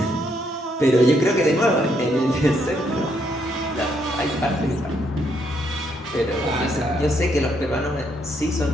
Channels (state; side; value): normal; both; correlation 0.74